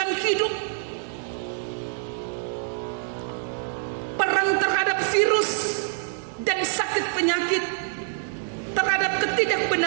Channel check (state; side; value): silent; left; 61 dB below the other